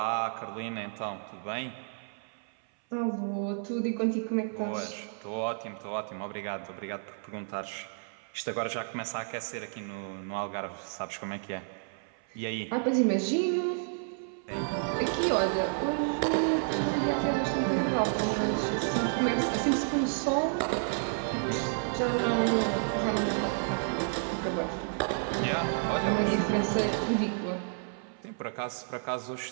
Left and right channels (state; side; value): silent; left; 57 dB below the other